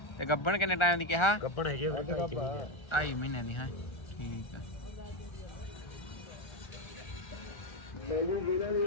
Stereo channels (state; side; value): late; right; 1.3 ms